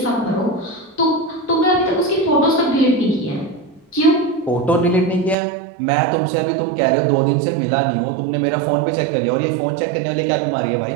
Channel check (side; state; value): left; drops out; at 5.4 s